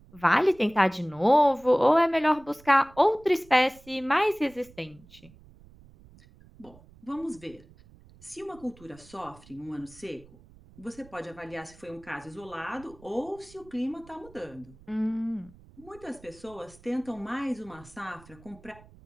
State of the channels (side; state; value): right; noise; rumble, 24 dB below the sound